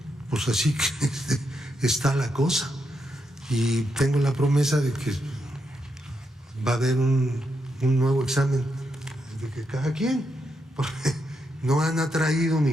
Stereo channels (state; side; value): normal; both; correlation 0.82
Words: pues así que está la cosa. Y tengo la promesa de que va a haber un nuevo examen de que cada quien, porque no han atraído